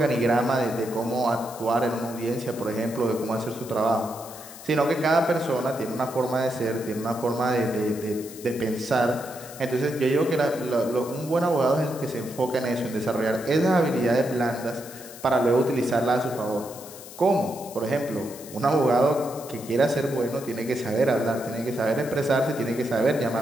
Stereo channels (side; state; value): left; noise; hiss, 16 dB below the sound